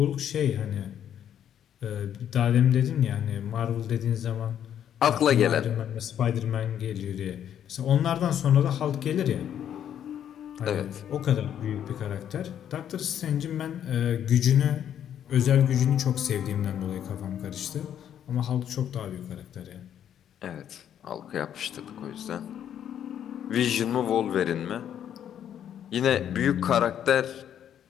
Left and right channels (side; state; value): right; quieter; 9.7 dB